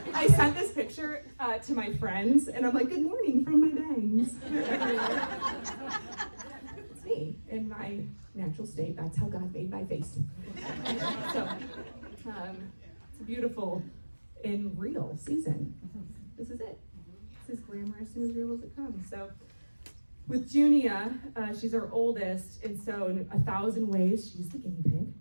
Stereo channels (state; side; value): inverted; both; correlation -1.00